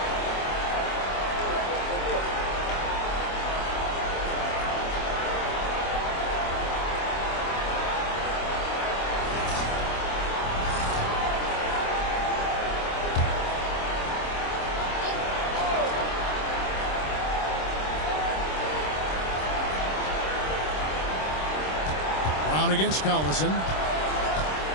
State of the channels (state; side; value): late; right; 26 ms